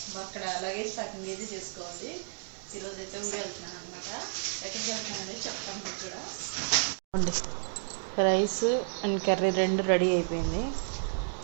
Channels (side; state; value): left; silent; digital silence